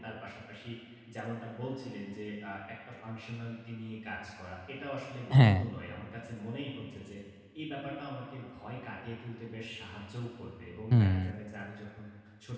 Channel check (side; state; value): both; identical; correlation 1.00